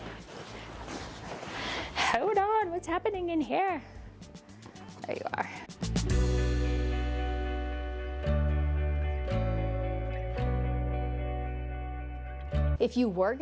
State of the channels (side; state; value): both; identical; correlation 1.00